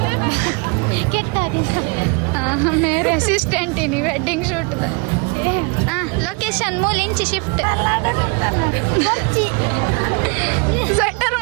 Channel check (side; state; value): left; quieter; 32.4 dB